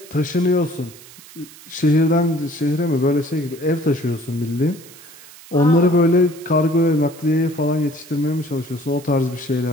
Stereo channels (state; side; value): noise; right; hiss, 20 dB below the sound